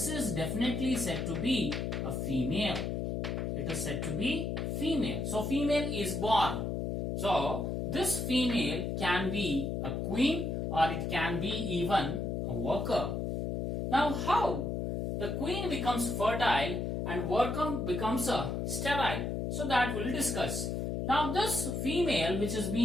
is definitely said to be a female. It is said to be female. So female is born. So this female can be a queen or it can be even a worker. Now how the queen becomes fertile and worker becomes a sterile? So that we'll discuss. Now this female which is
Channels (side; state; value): left; noise; hum, 1 dB below the sound